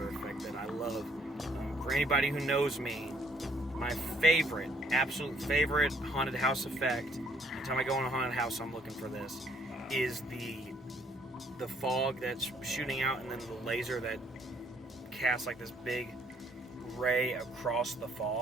effect that I love. For anybody who knows me, my absolute favorite haunted house effect, anytime I go in a haunted house, I'm looking for this, is the fog that's shooting out, and then the laser that casts like this big ray across the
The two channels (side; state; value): both; normal; correlation 0.64